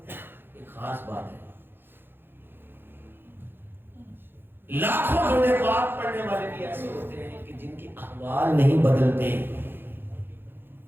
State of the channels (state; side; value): late; left; 0.10 ms